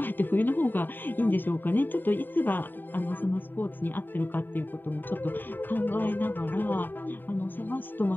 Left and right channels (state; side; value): late; right; 0.092 ms